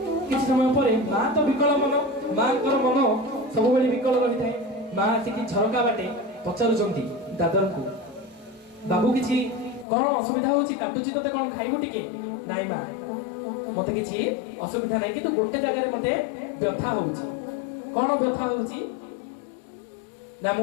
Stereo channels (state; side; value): drops out; right; at 9.9 s